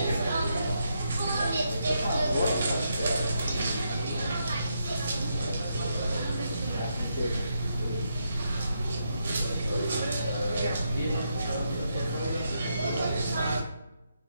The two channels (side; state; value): both; inverted; correlation -0.80